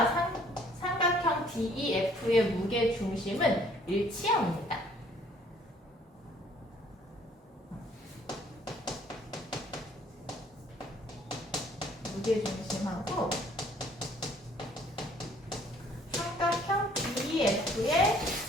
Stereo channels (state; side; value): normal; both; correlation 0.59